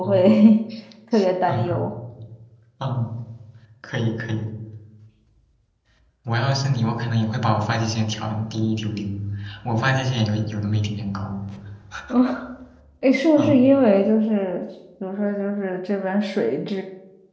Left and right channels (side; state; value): both; identical; correlation 1.00